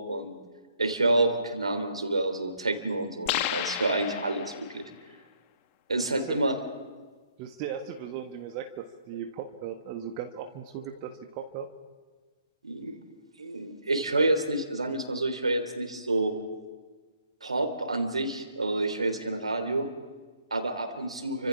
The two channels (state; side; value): inverted; both; correlation -0.68